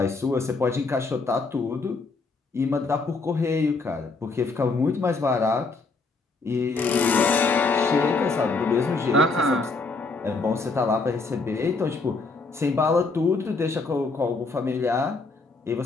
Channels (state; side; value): quieter; right; 3.9 dB